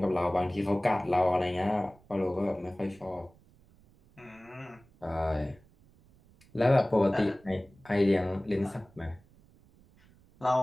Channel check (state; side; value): noise; right; rumble, 28 dB below the sound